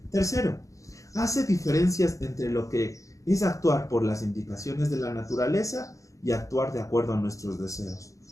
Tercero, hace diferencias entre lo que es actuar por las indicaciones de la naturaleza y actuar de acuerdo a nuestros deseos.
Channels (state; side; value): late; right; 0.16 ms